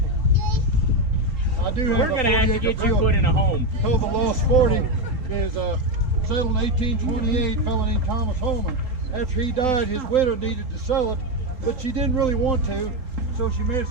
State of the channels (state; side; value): late; left; 3.9 ms